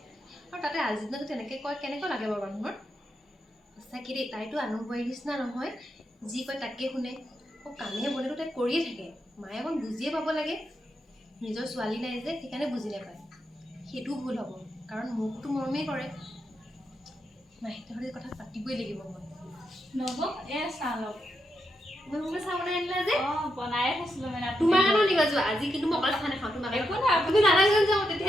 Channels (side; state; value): both; normal; correlation 0.83